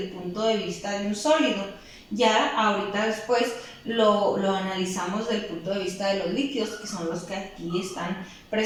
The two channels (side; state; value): both; identical; correlation 1.00